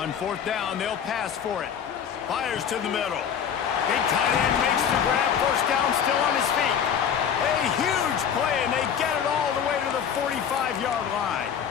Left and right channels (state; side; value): quieter; right; 8.0 dB